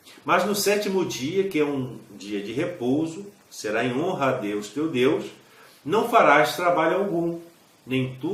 mas no 7º dia, que é um dia de repouso, será em honra a Deus teu Deus, não farás trabalho algum, nem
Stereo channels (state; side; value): identical; both; correlation 1.00